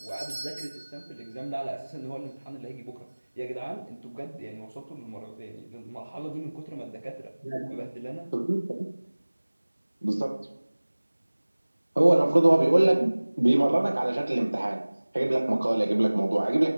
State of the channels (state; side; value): inverted; both; correlation -1.00